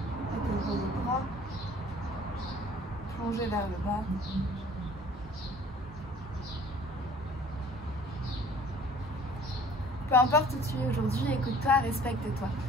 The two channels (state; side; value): normal; both; correlation 0.52